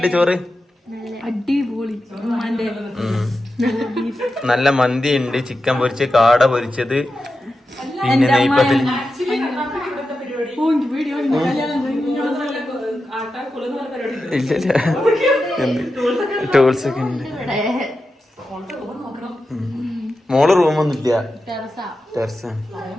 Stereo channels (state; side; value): normal; both; correlation 0.91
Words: ചോറ്? അടിപൊളി. നല്ല മന്തി ഉണ്ട്, ചിക്കൻ പൊരിച്ച്, കാട പൊരിച്ചത്, പിന്നെ നെയ്പ്പത്തിൽ ഇല്ല ടൂൾസ് ഒക്കെ ഉണ്ട്. മോള് റൂമൊന്നും ഇല്ല, ടെറസ്.